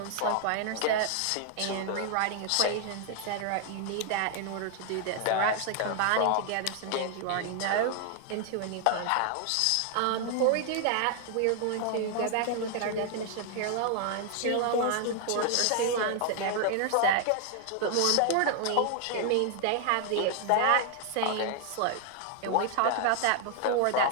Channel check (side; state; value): both; different; correlation 0.00